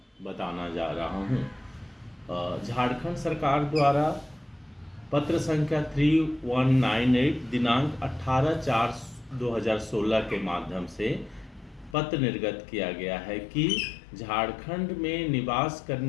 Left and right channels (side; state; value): right; drops out; at 12.0 s